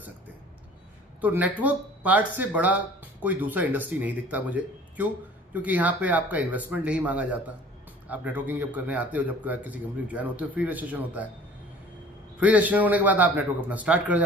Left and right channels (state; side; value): normal; both; correlation 0.48